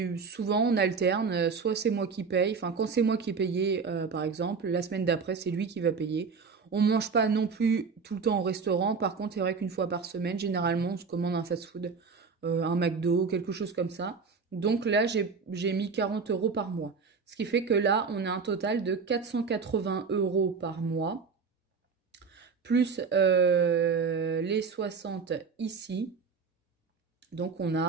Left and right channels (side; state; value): left; quieter; 5.2 dB